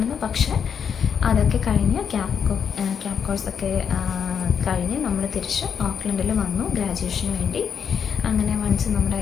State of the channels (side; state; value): right; quieter; 7.3 dB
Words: പക്ഷേ അതൊക്കെ കഴിഞ്ഞ് ക്യാബ് കോഴ്സൊക്കെ കഴിഞ്ഞ് നമ്മൾ തിരിച്ച് ഓക്ലൻഡിൽ വന്നു ഗ്രാജുവേഷന് വേണ്ടി. അങ്ങനെ വൺസ് നമ്മുടെ